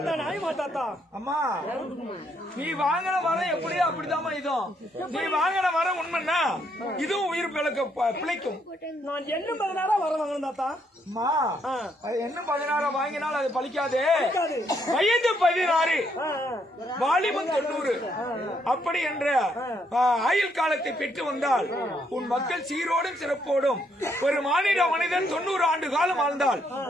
நாயுமா தாத்தா? அம்மா நீ வாங்கின வரம் எப்படியோ அப்படிதாம்மா இதுவும். நீ வாங்கின வரம் உண்மைன்னா இதுவும் உயிர் பிழைக்கும். நான் என்ன 16 வரம் வாங்கணும் தாத்தா? அம்மா என்ன 16 வாங்கினால் அது பலிக்காது. வயது 16 வாலிபம் 90 அப்படி என்ற ஆயுள் காலத்தை பெற்று வந்தால் உன் மக்கள் சீரோடும் சிறப்போடும் ஒரு மனிதன் 90 ஆண்டு காலம் வாழ்ந்தால்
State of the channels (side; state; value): both; normal; correlation 0.73